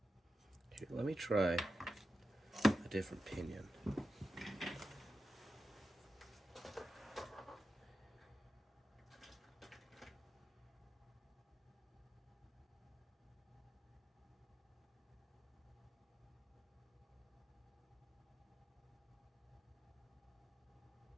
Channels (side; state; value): both; normal; correlation 0.90